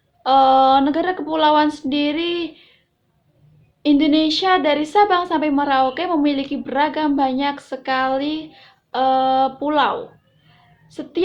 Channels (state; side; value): identical; both; correlation 1.00